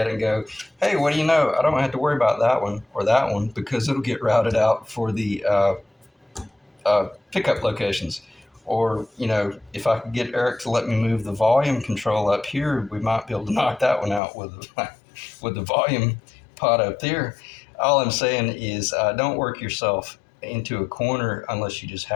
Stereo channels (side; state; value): right; drops out; at 14.2 s